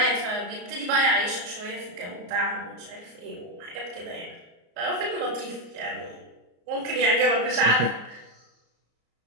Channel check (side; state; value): left; late; 34 ms